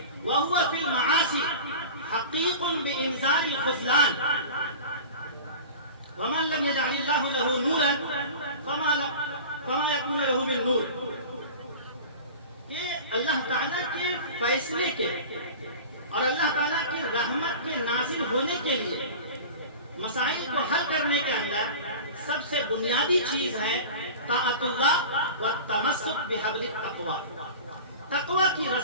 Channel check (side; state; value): both; inverted; correlation -0.35